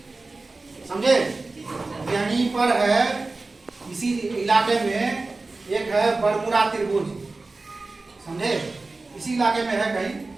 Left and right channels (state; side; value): quieter; left; 3.4 dB